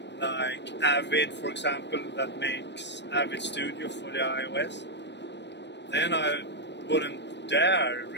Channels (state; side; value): late; right; 0.51 ms